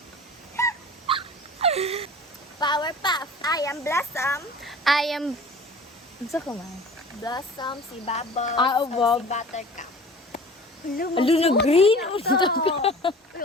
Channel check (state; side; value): normal; both; correlation 0.42